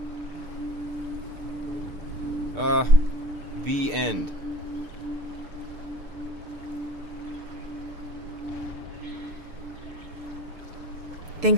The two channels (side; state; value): left; late; 6.7 ms